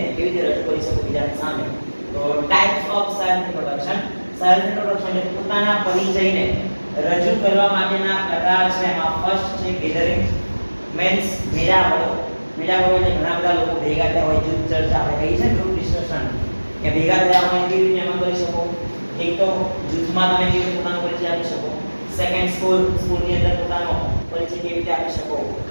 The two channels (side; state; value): both; inverted; correlation -1.00